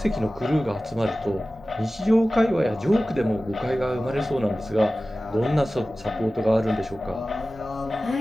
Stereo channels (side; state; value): both; normal; correlation 0.96